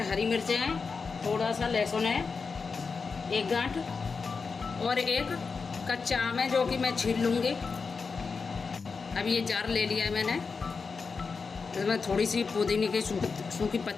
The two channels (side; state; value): right; quieter; 4.9 dB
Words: हरी मिर्चें हैं, थोड़ा सा लहसुन है, एक गांठ, और एक कच्चा आम है जो कि मैं छील लूँगी। अब ये जार ले लिया है मैंने, इसमें थोड़ी सी पुदीने की सूखी